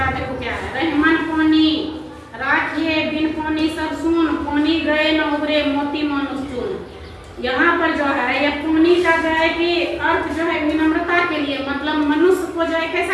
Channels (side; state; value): both; identical; correlation 1.00